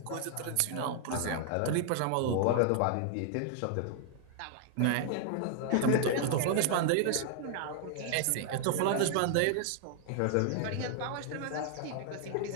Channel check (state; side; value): different; both; correlation 0.00